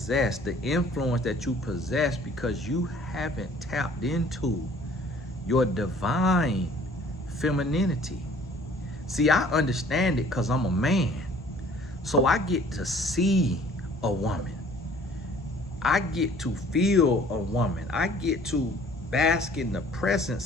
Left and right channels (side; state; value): both; normal; correlation 0.54